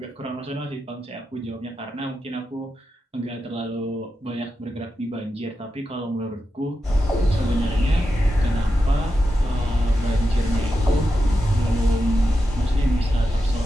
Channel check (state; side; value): normal; both; correlation 0.89